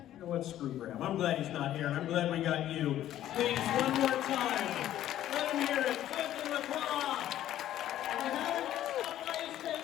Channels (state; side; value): quieter; right; 12.5 dB